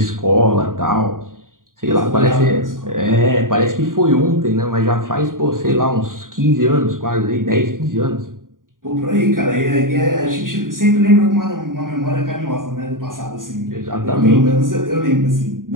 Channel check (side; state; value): left; late; 0.90 ms